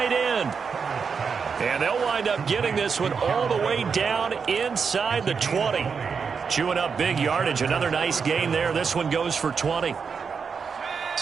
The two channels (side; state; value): left; quieter; 5.9 dB